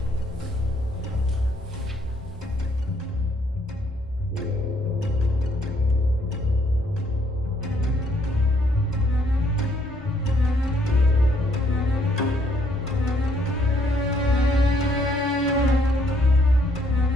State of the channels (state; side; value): normal; both; correlation 0.68